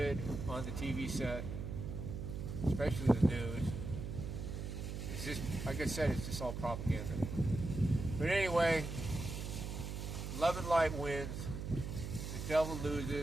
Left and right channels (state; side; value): noise; right; hum, 5 dB below the sound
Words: on the TV set, especially the news. It's just, like I said, it's just all propaganda. But anyway, love and light wins. The devil